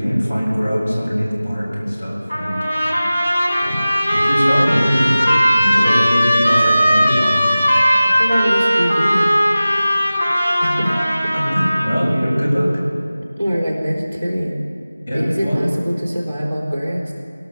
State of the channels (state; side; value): inverted; both; correlation -0.97